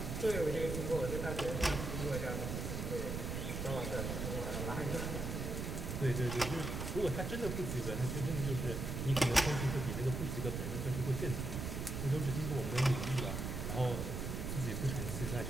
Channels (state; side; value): noise; right; rumble, 3 dB below the sound